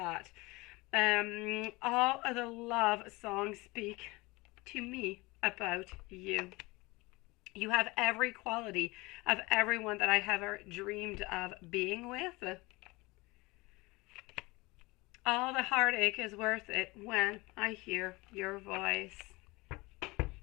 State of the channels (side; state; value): right; quieter; 23.3 dB